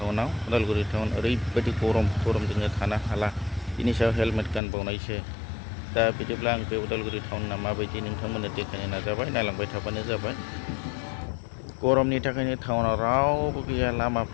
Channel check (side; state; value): right; drops out; at 4.6 s